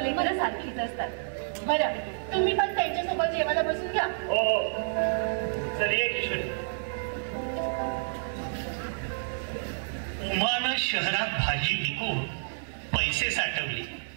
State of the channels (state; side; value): silent; left; digital silence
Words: सारखीच असतात. बरं तुम्ही पण त्यांच्यासोबत जेवायला बसून घ्या. हो चल ये किशोरी. उमानं शहरात भाजी विकून पैसे साठवले.